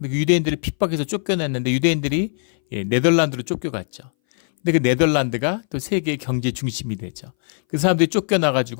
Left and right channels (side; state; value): right; silent; 61 dB below the other